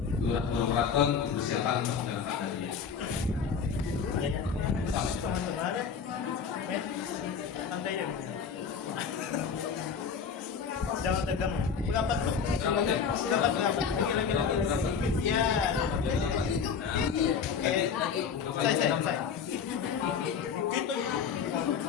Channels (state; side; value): quieter; right; 6.6 dB